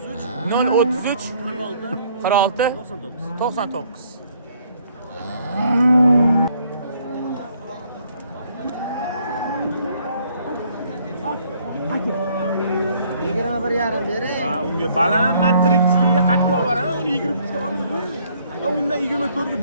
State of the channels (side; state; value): both; inverted; correlation -0.64